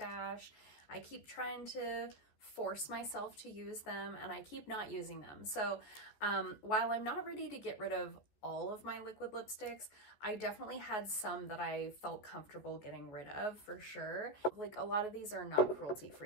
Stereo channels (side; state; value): right; late; 14 ms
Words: I keep trying to force myself to use them and I keep not using them. So while I'm not ready to get rid of all of my liquid lipsticks, I definitely had some that I felt comfortable getting rid of for sure. Like a lot of these are not cruelty